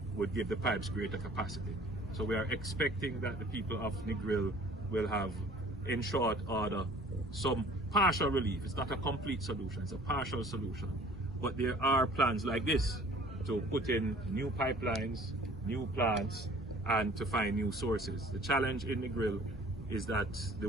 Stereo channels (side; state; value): both; normal; correlation 0.51